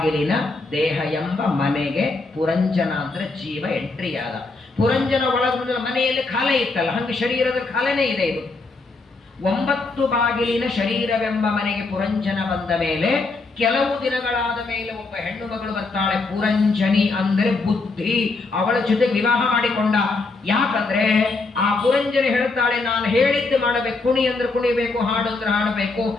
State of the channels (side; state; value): right; quieter; 3.6 dB